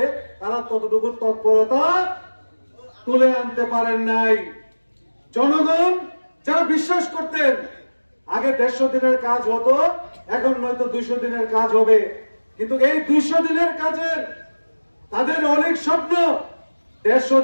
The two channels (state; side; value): inverted; both; correlation -1.00